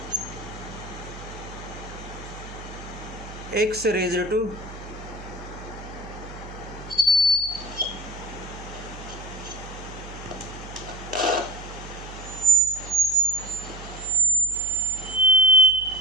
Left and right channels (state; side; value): noise; right; hum, 14 dB below the sound